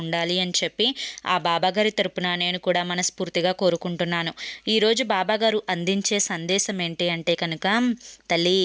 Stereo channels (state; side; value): identical; both; correlation 1.00